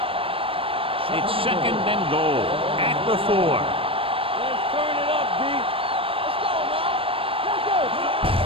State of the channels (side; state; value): left; late; 0.26 ms